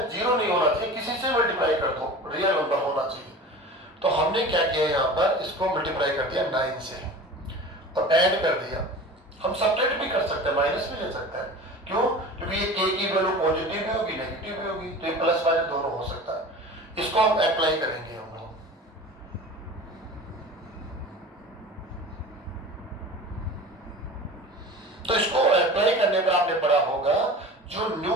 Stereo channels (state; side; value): normal; both; correlation 0.36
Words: जीरो नहीं होना चाहिए, किसी से मल्टीप्लाई कर दो, रियल नंबर होना चाहिए। तो हमने क्या किया, यहाँ पर इसको मल्टीप्लाई कर दिया 9 से और ऐड कर दिया। हम सब्ट्रैक्ट भी कर सकते हैं, माइनस भी ले सकते हैं, क्यों, क्योंकि ये k की वैल्यू पॉजिटिव भी होगी नेगेटिव भी होगी, तो ये प्लस माइनस दोनों हो सकता है। इसको हम अप्लाई करेंगे हम लोग, तो इसको अप्लाई करने पर आपने पढ़ा होगा जो न्यू